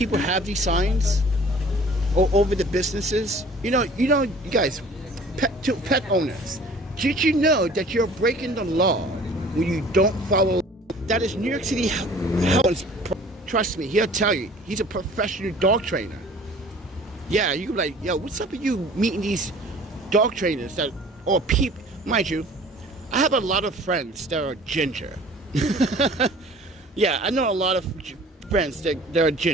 have these signs all over the businesses? You know, you guys, pet owners, did you know that you're breaking the law when you don't follow? That is New York City. Trust me, he'll tell you. He's a professional dog trainer. Yeah, you can be like, yo, what's up with you meeting these dog trainers that, or people, mind you, I have a lot of friends that are ginger. Yeah, I know a lot of friends that are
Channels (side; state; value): both; normal; correlation 0.49